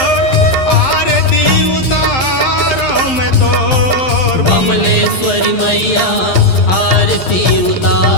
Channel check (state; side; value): late; right; 11 ms